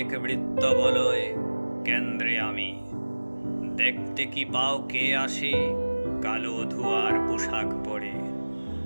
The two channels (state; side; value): inverted; both; correlation -1.00